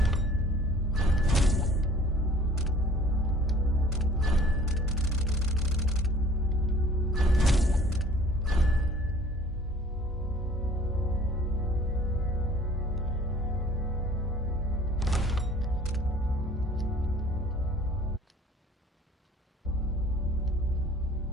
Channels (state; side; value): normal; both; correlation 0.52